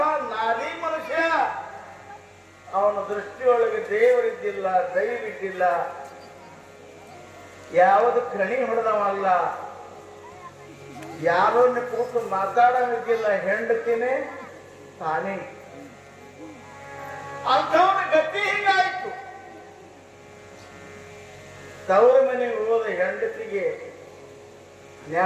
ನಾದಿ ಮನುಷ್ಯ. ಅವನ ದೃಷ್ಟಿಯೊಳಗೆ ದೇವರಿದ್ದಿಲ್ಲ, ದೈವಿದ್ದಿಲ್ಲ, ಯಾವುದು ಕಣಿ ಹೊಡೆದವಲ್ಲ, ಯಾರೋ ಕೂತು ಮಾತಾಡೋದಿಲ್ಲ. ಹೆಂಡತಿನೇ ತಾನೇ. ಅಂಥವನ ಗತಿ ಹಿಂಗಾಯ್ತು. ತವರ ಮನೆಗೆ ಹೋದ ಹೆಂಡತಿಗೆ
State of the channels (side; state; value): both; identical; correlation 1.00